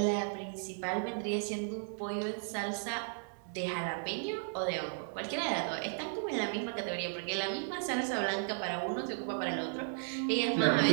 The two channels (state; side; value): silent; left; digital silence